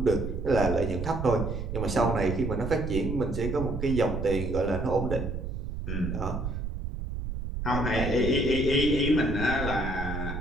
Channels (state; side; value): noise; right; rumble, 5 dB below the sound